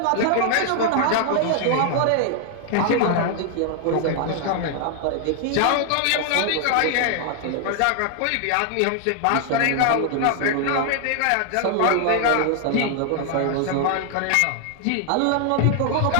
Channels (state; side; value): different; both; correlation 0.00